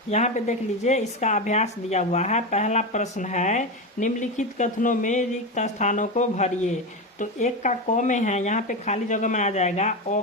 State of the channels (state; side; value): normal; both; correlation 0.17